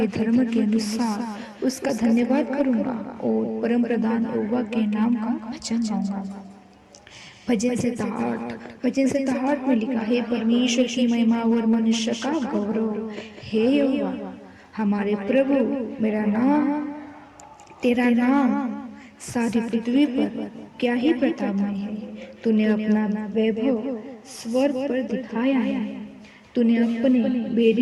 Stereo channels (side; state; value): both; identical; correlation 1.00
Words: धर्म के अनुसार उसका धन्यवाद करूंगा और परम प्रधान यहोवा के नाम का भजन गाऊंगा। भजन संहिता 8 में लिखा है, परमेश्वर की महिमा और मनुष्य का गौरव। हे यहोवा हमारे प्रभु, तेरा नाम सारी पृथ्वी पर क्या ही प्रतापमय है। तूने अपना वैभव स्वर्ग पर दिखाया है। तूने अपने